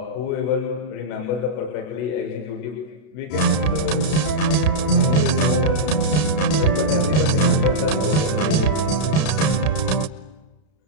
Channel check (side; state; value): right; late; 32 ms